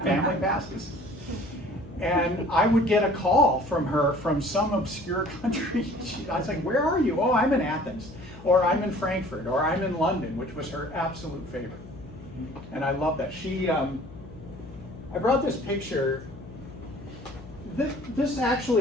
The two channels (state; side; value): noise; left; hum, 17 dB below the sound